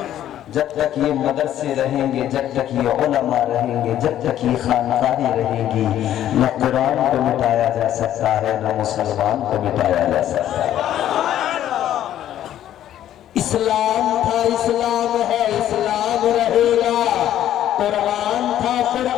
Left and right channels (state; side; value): quieter; right; 11.7 dB